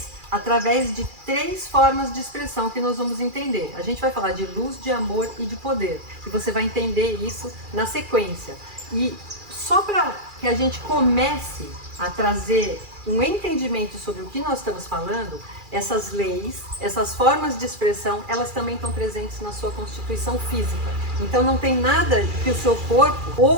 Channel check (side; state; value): left; late; 2.4 ms